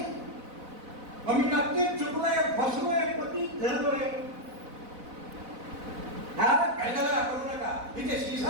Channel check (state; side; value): late; left; 4.0 ms